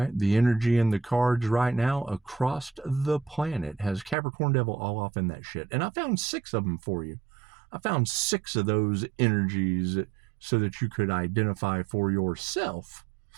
The energy in the cards right now across the planet has Capricorn Devil all off in that shit. And I found 6 of them for you. I found 6 of those energies so that you could identify for yourself.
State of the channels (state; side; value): drops out; left; at 4.2 s